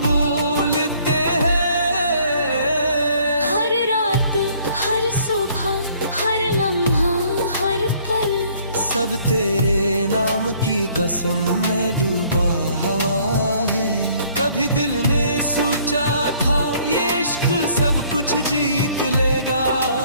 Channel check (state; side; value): inverted; both; correlation -0.60